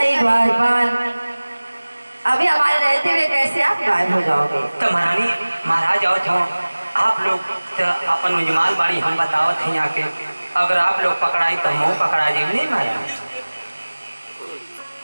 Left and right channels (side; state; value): both; inverted; correlation -1.00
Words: द्वारपाल, अभी हमारे रहते हुए कैसे आप गायब हो जाओगे? तो महारानी, महाराज आवत हो, आप लोग तो अपन उजमाल बाड़ी हम बतावत हैं यहाँ के, अगर आप लोग पकड़ाई तो हम पकड़ा जाए नहीं महाराज।